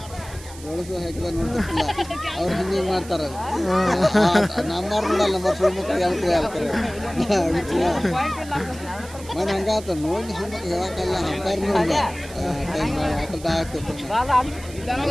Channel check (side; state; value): right; noise; hiss, 18 dB below the sound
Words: ಜೋಳಿಸ ಹಾಕಿದ ನೋಡ್ತಿರ್ತಿಲ್ಲ ಅವ್ರು ಹಿಂಗೆ ಮಾಡ್ತಾರೆ ನಮ್ಮವ್ರು ನೋಡಲ್ಲ ನಮ್ಮ ಸುಳ್ಮಕ್ಳು ಹೇಳ್ತಾರೆ ಮನೆ ಹಂಗಾತ ನೋಡಿ ಸುಳ್ಮಕ್ಳು ಹೇಳಕ್ಕಲ್ಲ ಅಂಪಾರು ನೋಡಿಲ್ಲ ಆಟದ ಆಗ್ತದೆ